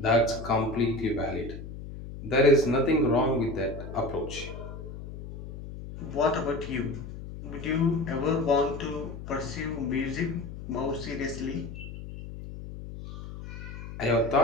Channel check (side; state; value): left; noise; hum, 11 dB below the sound